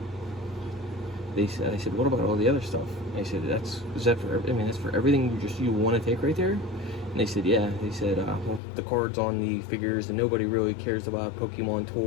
They said, I said, what about all the other stuff? I said, that's for everything you want to take right there? And they said, yeah. They said, well, the cards on the figures, and nobody really cares about Pokemon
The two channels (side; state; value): right; drops out; at 8.6 s